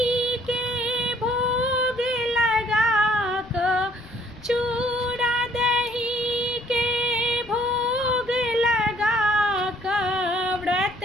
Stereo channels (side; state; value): left; noise; rumble, 23 dB below the sound